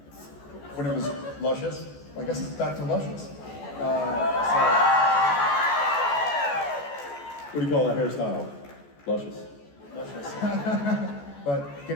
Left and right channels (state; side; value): late; right; 14 ms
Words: when it was luscious. I guess it's back to luscious. What do you call that hairstyle? Luscious. Luscious. But